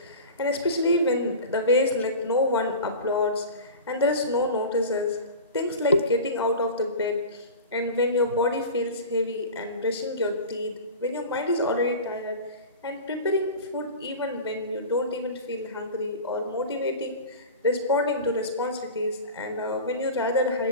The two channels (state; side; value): inverted; both; correlation -0.33